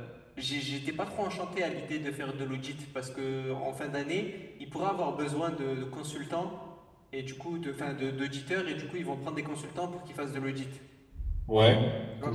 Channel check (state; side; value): identical; both; correlation 1.00